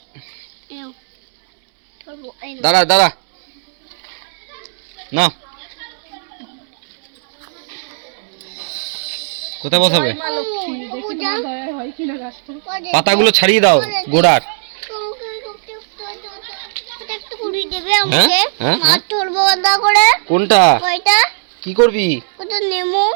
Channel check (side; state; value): left; silent; digital silence